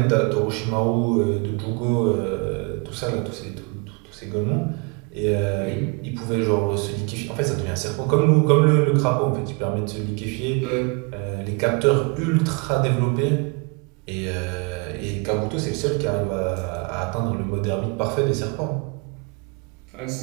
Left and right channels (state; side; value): quieter; left; 32.3 dB